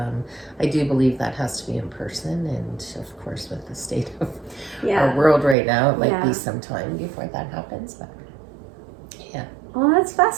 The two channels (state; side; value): drops out; left; at 5.6 s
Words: I do believe that has to be in person, and of course with the state of our world right now, it might be some time before that happens, but yeah. Well, that's